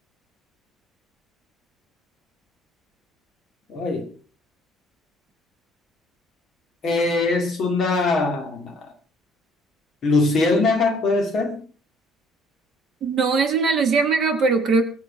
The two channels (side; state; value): both; normal; correlation 0.58